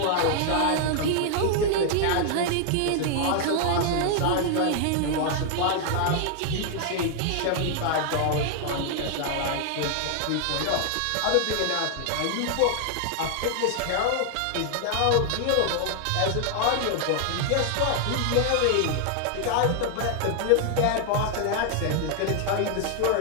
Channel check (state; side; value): different; both; correlation 0.00